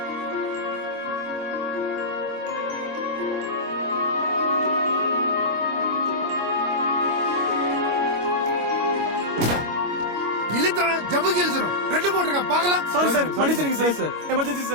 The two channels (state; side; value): late; left; 25 ms